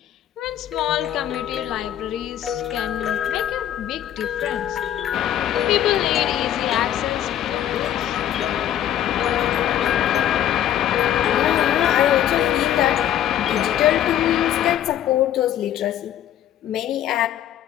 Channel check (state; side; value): quieter; right; 11.1 dB